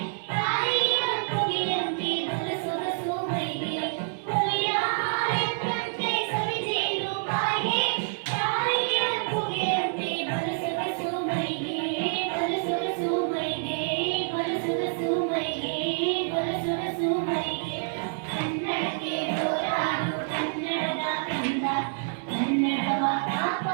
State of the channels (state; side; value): silent; left; 60 dB below the other